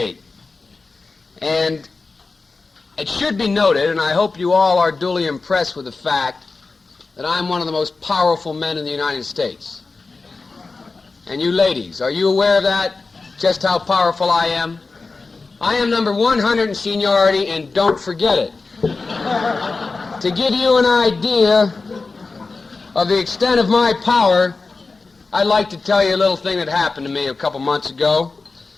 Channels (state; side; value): quieter; right; 4.0 dB